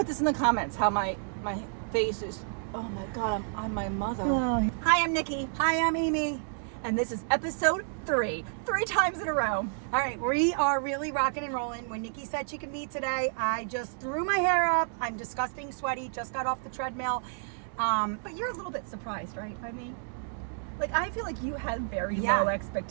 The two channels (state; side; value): silent; left; digital silence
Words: this in the comments how my face is. Oh my God, I'm my mother. Oh. Hi, I'm Nikki. Hi, I'm Amy. And this is episode 3 times in a row. All right, we are really rocking and rolling. When Nikki said she could meet today, I just threw my hair up. I'm disgusting sweaty, just got off the treadmill. But you're a little bit surprised, right, by me? Like, I feel like you had very low